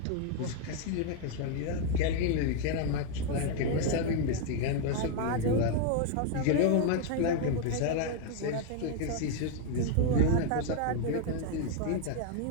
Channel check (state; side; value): different; both; correlation 0.00